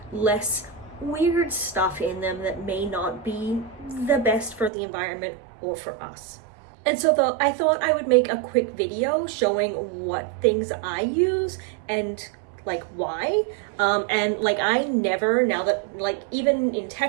less weird stuff in them that may not be the best for the environment or for us. And so I thought I would make a quick video showing what things I use and like why. I never, now that even in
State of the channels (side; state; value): left; drops out; at 4.7 s